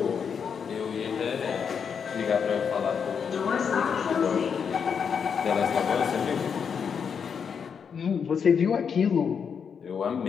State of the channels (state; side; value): quieter; right; 6.7 dB